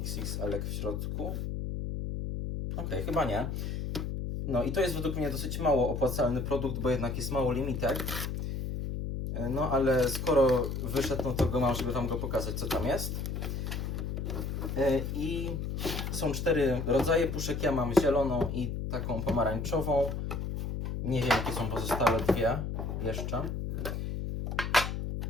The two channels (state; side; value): noise; left; hum, 3 dB below the sound